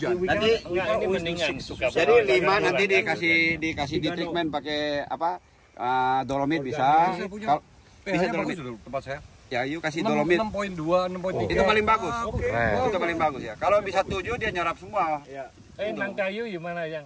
Nanti Enggak, ini mendingan suka jadi bawah, 5 kan nanti bulan, dikasih di treatment pakai apa? Dolomit bisa. Bisa dolomit tempat saya. Ya, yuk kasih dolomit. 6.2, 6.3. Itu paling bagus. Keren. Itu paling bagus ya. Kalau bisa 7 dia nyerap semua. Ya. Nangkayu gimana yang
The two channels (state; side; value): identical; both; correlation 1.00